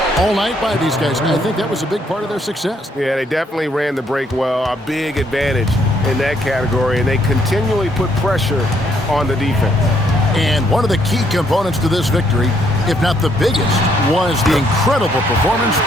all night by these guys. I think that was a big part of their success. Yeah, they definitely ran the break well. A big advantage in that category, and they continually put pressure on the defense. And one of the key components to this victory, if not the biggest, was the incredible performance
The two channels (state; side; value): normal; both; correlation 0.70